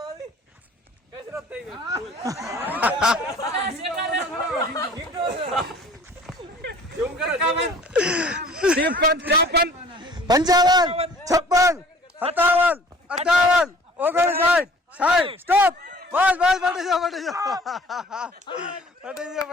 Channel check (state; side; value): normal; both; correlation 0.50